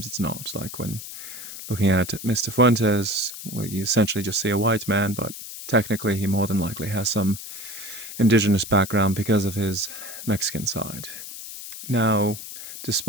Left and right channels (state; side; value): noise; left; hiss, 11 dB below the sound